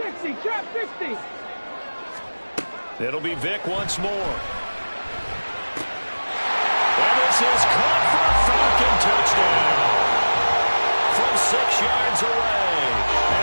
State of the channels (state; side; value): inverted; both; correlation -1.00